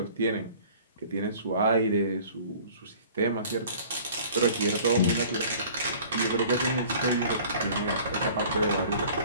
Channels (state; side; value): inverted; both; correlation -0.48